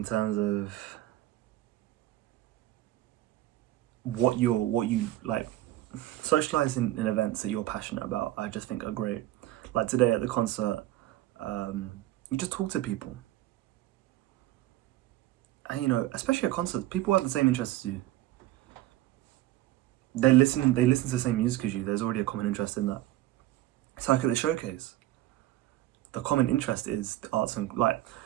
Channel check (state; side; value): quieter; left; 15.3 dB